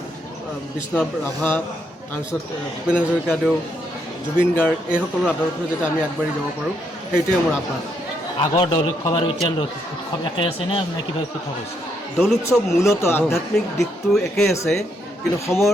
বিষ্ণুনাথ ৰাভা, তাৰপিছত ভূপেন হাজৰিকাদেউ, জুবিন গাৰ্গ এইসকলৰ আদৰ্শৰে যাতে আমি আগবাঢ়ি যাব পাৰোঁ, সেইটোৱে মোৰ আহ্বান। আগৰ দৌল উৎসৱ আৰু এতিয়া উৎসৱ একে আছেনে নে কিবা পৃথক হৈছে? দৌল উৎসৱ মূলতঃ আধ্যাত্মিক দিশটো একেই আছে, কিন্তু সময়ৰ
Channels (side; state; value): both; normal; correlation 0.76